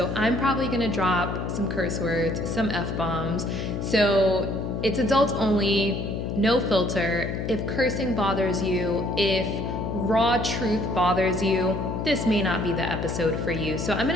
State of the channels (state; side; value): noise; left; hum, 3 dB below the sound